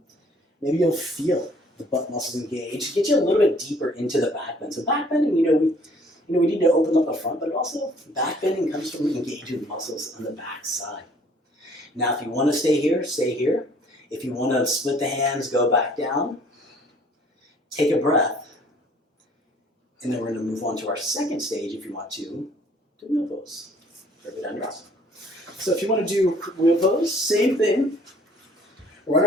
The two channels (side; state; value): both; normal; correlation 0.57